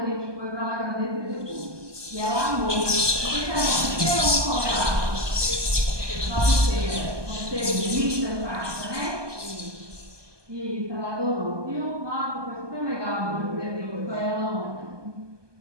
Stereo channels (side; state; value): left; late; 1.2 ms